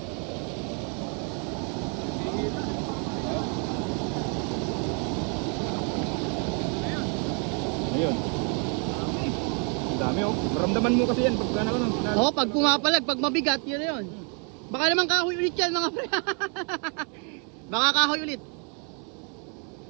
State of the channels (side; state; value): left; quieter; 36.9 dB